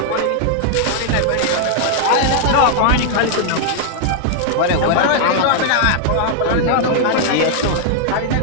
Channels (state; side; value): different; both; correlation 0.00